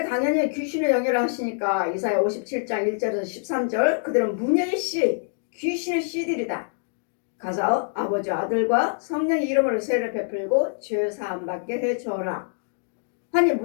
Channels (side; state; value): right; silent; digital silence